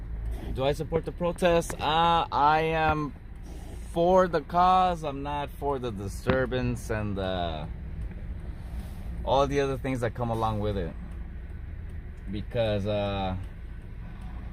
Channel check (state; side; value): identical; both; correlation 1.00